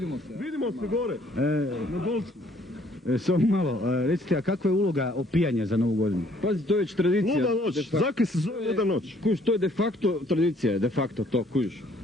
se. Vidimo se gore, na Dolcu. Samo malo, recite, a kakva je uloga opijanja za Novu godinu? Pazi, to je već tradicija. Luda noć, zakaj se zove luda noć? Kuš, to je de facto tradicija, de facto to, kuš.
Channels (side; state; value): both; normal; correlation 0.62